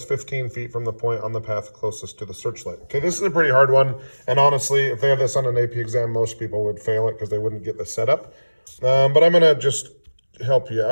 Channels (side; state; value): both; inverted; correlation -1.00